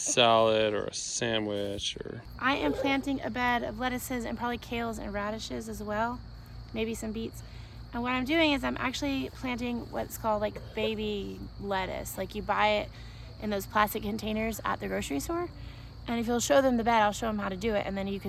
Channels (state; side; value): identical; both; correlation 1.00